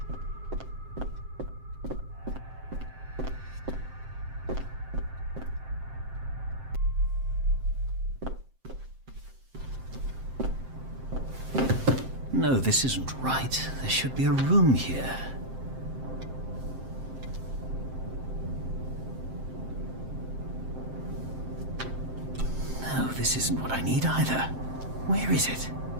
No, this isn't right. There should be a room here. No, this isn't what I need either. Where is it?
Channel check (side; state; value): left; late; 7.6 ms